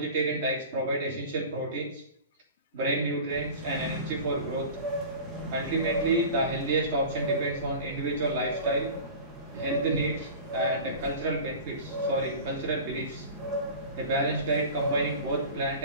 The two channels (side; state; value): both; inverted; correlation -0.36